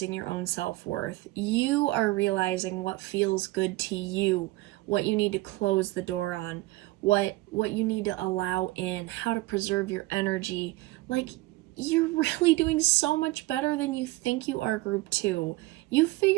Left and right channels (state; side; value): quieter; left; 19.8 dB